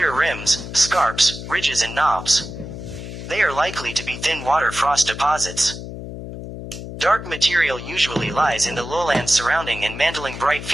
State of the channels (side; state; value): left; noise; hum, 10 dB below the sound